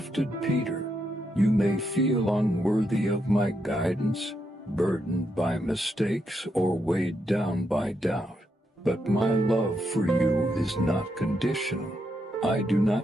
Peter. You may feel unworthy of my guidance, burdened by mistakes, or weighed down by doubt. But my love for you is not conditional. I do not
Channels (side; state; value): both; normal; correlation 0.81